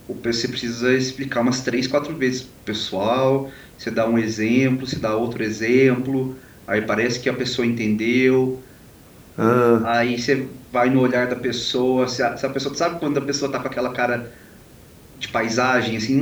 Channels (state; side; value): identical; both; correlation 1.00